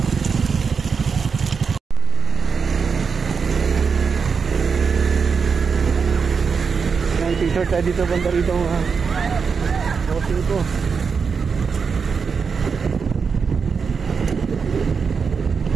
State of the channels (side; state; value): left; quieter; 5.7 dB